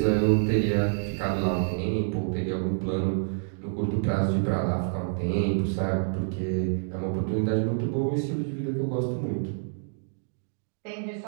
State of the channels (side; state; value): left; silent; digital silence